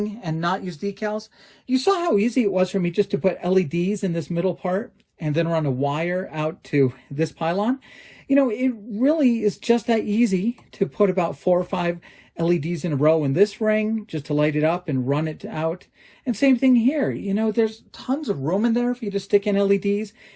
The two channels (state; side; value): identical; both; correlation 1.00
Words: and not use decals, you saw how easy it was for me just to put LEDs in this middle part and then run a wire out to this pylon. You know, it really is just that easy to put about 4 or 5 LEDs in a row in this ring just to light it up and run it out. And same thing here. You know, there's tons of room in there for you to stick in LEDs